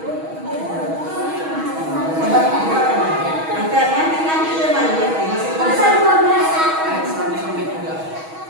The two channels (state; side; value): late; left; 6.3 ms